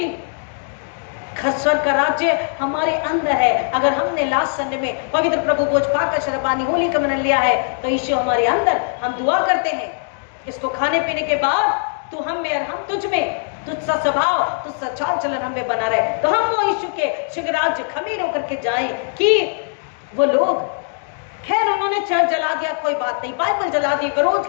स्वर्ग का राज्य हमारे अंदर है। अगर हमने लास्ट संडे में पवित्र प्रभु भोज पाकर शरबानी होली का मनन लिया है, तो यीशु हमारे अंदर, हम दुआ करते हैं इसको खाने पीने के बाद, तू हम में और हम तुझ में, तुझसा स्वभाव, तुझसा चाल चलन हमें बना रहे। तो हम वो यीशु के स्वर्ग राज्य खमीर होकर के जाएं कि वो लोग, खैर उन्होंने चर्च जला दिया, कोई बात नहीं, बाइबल जला दी, विरोध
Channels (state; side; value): silent; right; digital silence